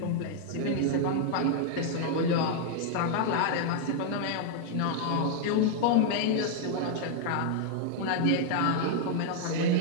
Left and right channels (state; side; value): different; both; correlation -0.01